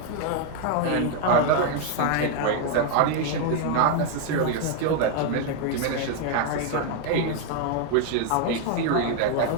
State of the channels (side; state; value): both; different; correlation 0.00